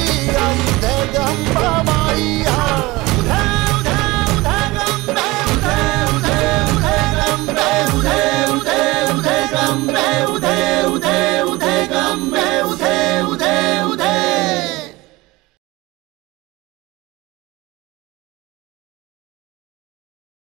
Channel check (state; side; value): quieter; left; 21.2 dB